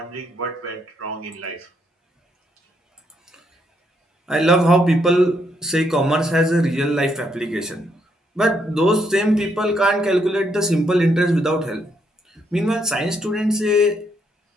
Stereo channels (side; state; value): both; normal; correlation 0.75